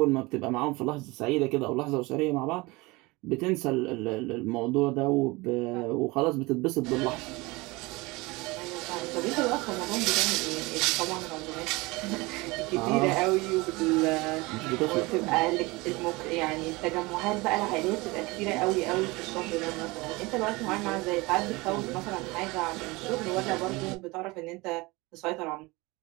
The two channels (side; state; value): left; quieter; 23.4 dB